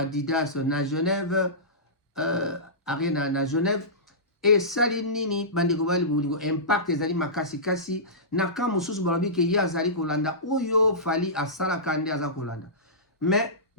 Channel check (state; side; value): normal; both; correlation -0.20